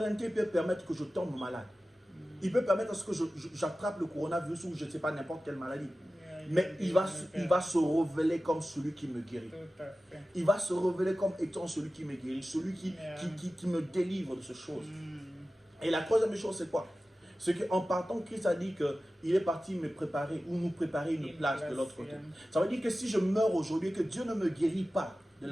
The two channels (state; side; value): normal; both; correlation 0.95